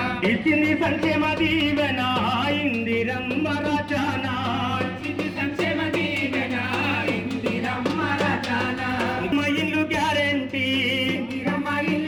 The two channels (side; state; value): both; identical; correlation 1.00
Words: ఇచ్చింది సంక్షేమ దీవెన ఇందిరమ్మ రాజానా ఇల్లు గ్యారెంటీ